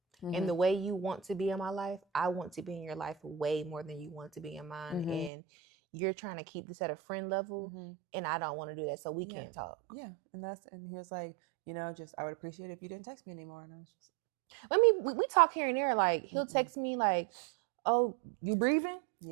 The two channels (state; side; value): drops out; left; at 5.3 s